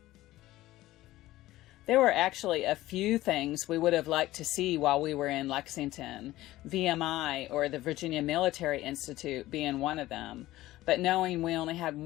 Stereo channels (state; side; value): quieter; right; 16.4 dB